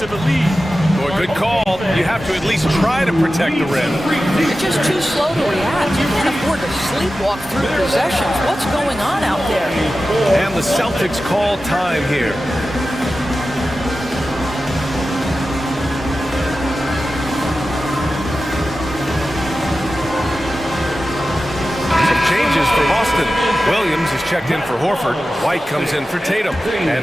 the lead. Boy, good call. You have to at least try to protect the rim. You're just too slow to react. You can't afford to sleepwalk through possessions. What's going on out there? And the Celtics call time here. Changes for Boston. Williams is checked in for Horford. White comes in for Tatum.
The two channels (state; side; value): normal; both; correlation 0.94